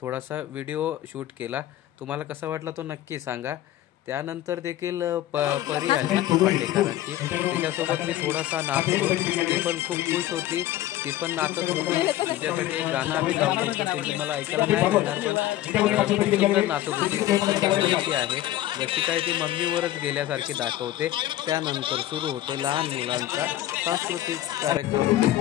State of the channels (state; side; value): quieter; right; 14.0 dB